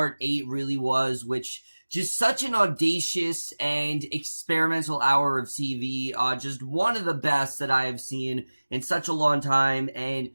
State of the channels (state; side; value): inverted; both; correlation -1.00